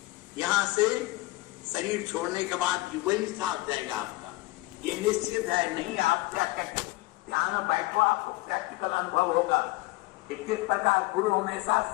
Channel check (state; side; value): quieter; right; 21.0 dB